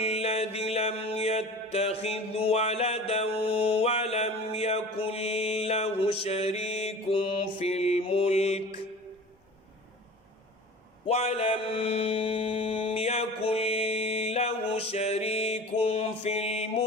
لم يتخذ ولدا ولم يكن له شريك في الملك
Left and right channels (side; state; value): both; normal; correlation 0.39